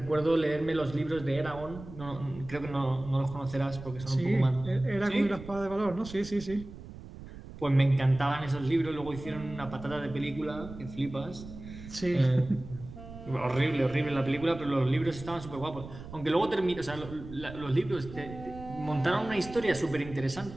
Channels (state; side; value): noise; right; rumble, 14 dB below the sound